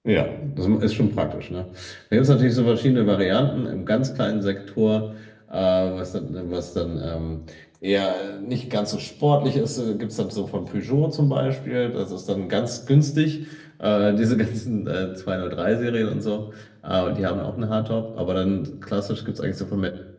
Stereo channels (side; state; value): both; identical; correlation 1.00